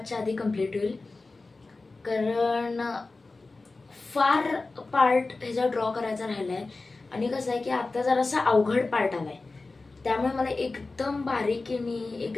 आधी कंप्लीट होईल, कारण फार पार्ट ह्याचा ड्रॉ करायचा राहिलाय. आणि कसं आहे की आता जरासा अवघड पार्ट आलाय, त्यामुळे मला एकदम बारीकीने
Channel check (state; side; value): quieter; right; 3.5 dB